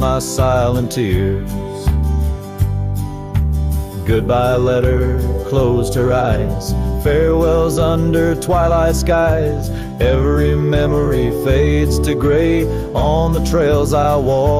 silent tears. Goodbye letter closed her eyes, farewells under twilight skies. Every memory fades to gray, on the trails I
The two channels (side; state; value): both; identical; correlation 1.00